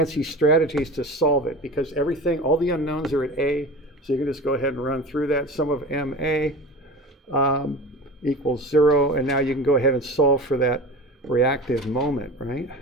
strategies to solve it because all the unknowns are at A, so you can just go ahead and run through that. Sum of MA equals 0, and now you can go ahead and solve for that reactive moment, right?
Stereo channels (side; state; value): both; normal; correlation 0.32